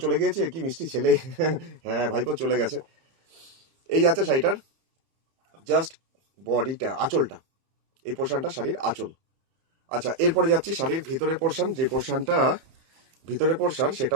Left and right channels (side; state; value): left; late; 30 ms